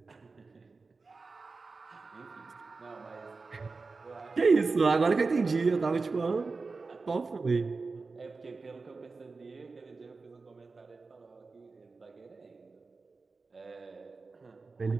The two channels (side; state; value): left; quieter; 4.1 dB